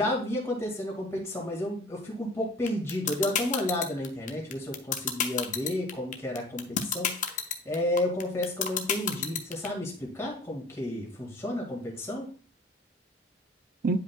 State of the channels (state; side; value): normal; both; correlation 0.46